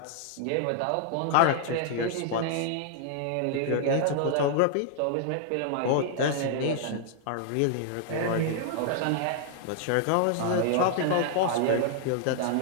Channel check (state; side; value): different; both; correlation -0.01